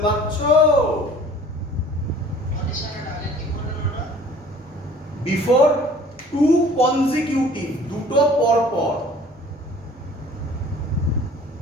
পারছো? বিফোর টু কনজিকিউটিভ, দুটো পর পর।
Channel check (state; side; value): normal; both; correlation 0.49